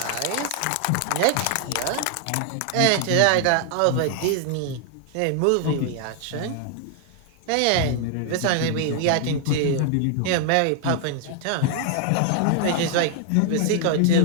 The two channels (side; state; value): both; different; correlation 0.00